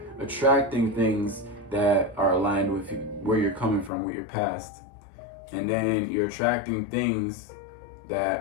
attracting things that are aligned with where you're coming from, with your past. And then you're attracting things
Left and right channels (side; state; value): right; drops out; at 3.9 s